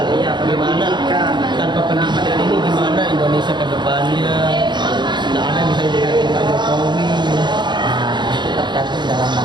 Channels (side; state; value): left; late; 0.22 ms